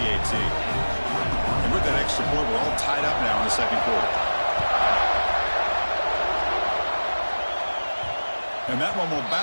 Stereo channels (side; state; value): both; inverted; correlation -1.00